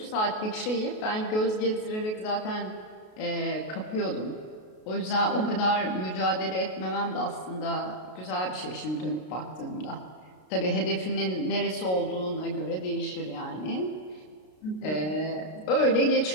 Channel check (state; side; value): late; right; 33 ms